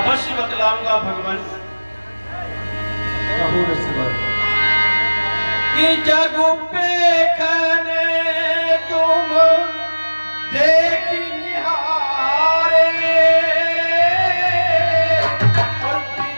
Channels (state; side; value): inverted; both; correlation -1.00